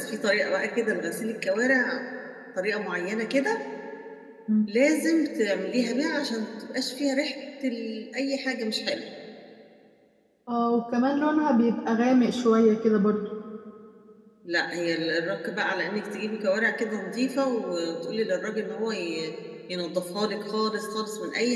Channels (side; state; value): both; identical; correlation 1.00